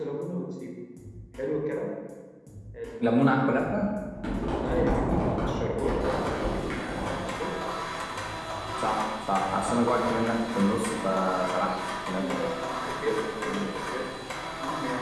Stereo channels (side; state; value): both; identical; correlation 1.00